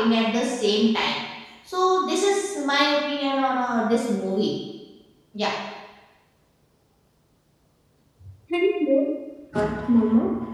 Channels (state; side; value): identical; both; correlation 1.00